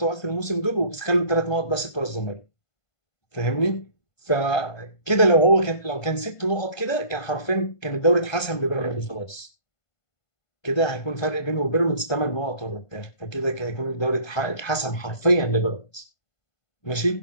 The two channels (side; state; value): right; late; 1.5 ms